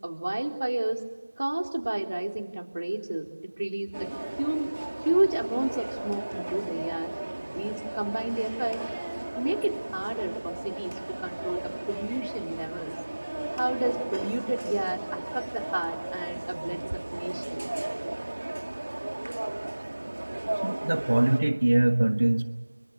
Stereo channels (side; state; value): both; inverted; correlation -1.00